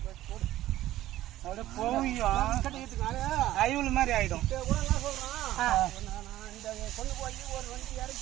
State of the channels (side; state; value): left; quieter; 14.6 dB